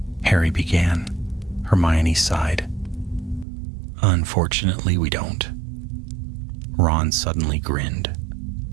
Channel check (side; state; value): left; drops out; at 3.5 s